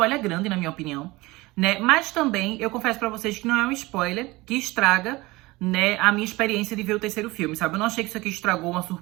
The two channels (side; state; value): left; quieter; 21.3 dB